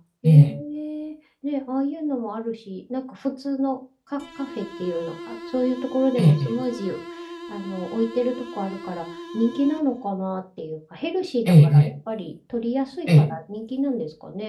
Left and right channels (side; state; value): both; identical; correlation 1.00